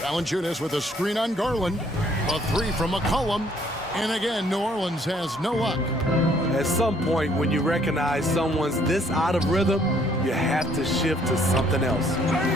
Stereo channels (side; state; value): both; normal; correlation 0.64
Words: with a screen on Garland. A 3 from McCollum. And again, New Orleans has no luck. At some point, when you recognize someone's this out of rhythm, you have to shift to something else.